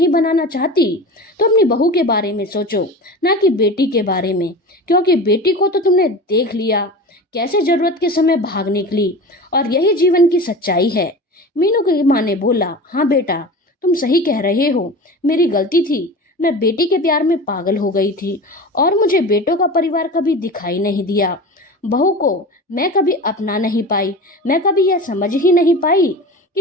बनाना चाहती तो अपनी बहू के बारे में सोचो, ना कि बेटी के बारे में, क्योंकि बेटी को तो तुमने देख लिया कैसे जरूरत के समय भाग निकली, और यही जीवन की सच्चाई है। मीनू की माँ ने बोला, हाँ बेटा, तुम सही कह रहे हो, मेरी गलती थी। मैं बेटी के प्यार में पागल हो गई थी और मुझे बेटों का परिवार कभी दिखाई नहीं दिया। बहू को मैं कभी अपना नहीं पाई। मैं कभी यह समझ ही नहीं पाई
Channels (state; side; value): normal; both; correlation 0.32